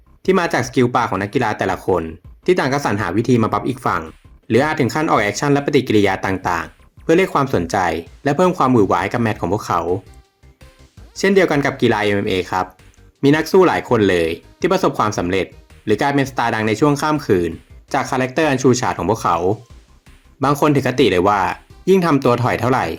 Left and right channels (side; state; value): both; identical; correlation 1.00